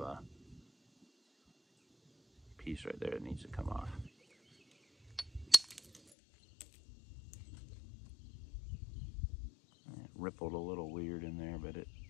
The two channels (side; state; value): right; drops out; at 6.0 s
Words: a piece right there that needs to come off. It rippled a little weird in there, but it